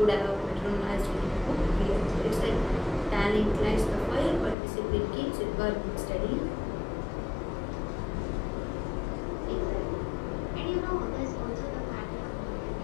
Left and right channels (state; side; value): drops out; right; at 4.5 s